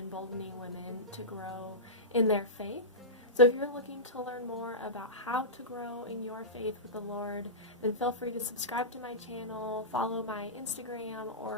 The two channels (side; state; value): both; normal; correlation -0.16